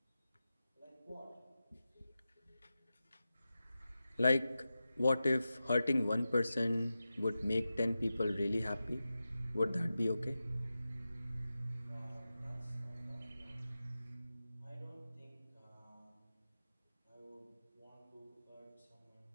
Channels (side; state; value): both; inverted; correlation -0.93